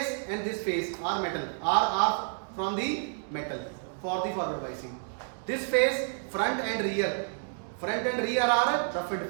and this face are metal, are from the metal for the forward biasing. This face, front and rear are roughened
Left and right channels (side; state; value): left; silent; digital silence